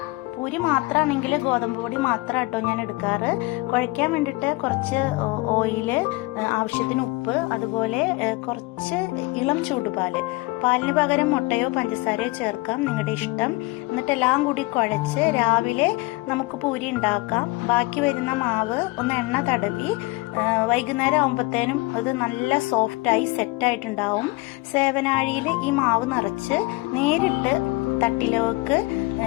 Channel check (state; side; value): quieter; right; 23.1 dB